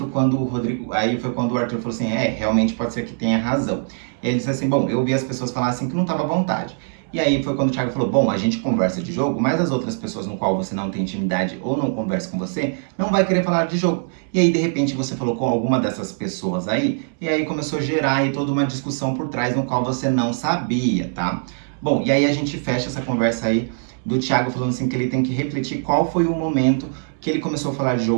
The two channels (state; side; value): silent; left; digital silence